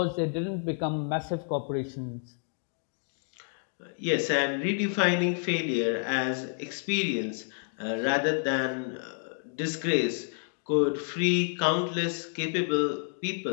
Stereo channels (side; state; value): right; silent; 58 dB below the other